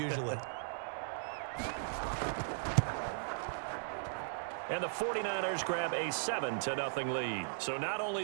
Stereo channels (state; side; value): silent; left; digital silence